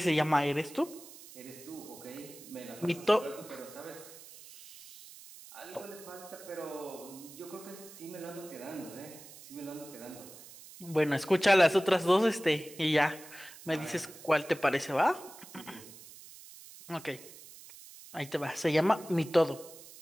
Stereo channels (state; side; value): noise; right; hiss, 18 dB below the sound